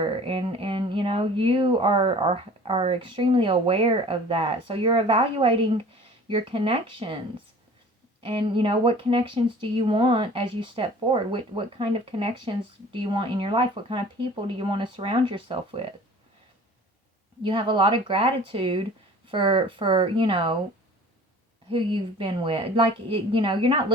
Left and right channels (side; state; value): both; normal; correlation 0.45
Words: And you are extremely aware of that. So you're evaluating your connections. And, what connections do you want as you step forward? What kind of connections do you want in your life? What kind of people do you want to surround yourself with? You have a lot of gratitude for who you've been with. Like, you're not